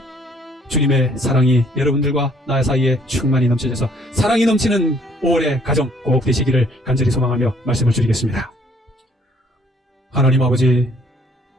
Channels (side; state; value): both; normal; correlation 0.62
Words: 주님의 사랑이 여러분들과 나 사이에 충만히 넘쳐져서 사랑이 넘치는 5월의 가정 꼭 되시기를 간절히 소망하며 말씀을 드리겠습니다. 하나님 아버지,